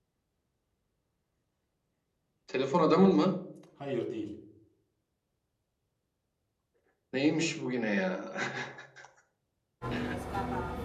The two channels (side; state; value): both; identical; correlation 1.00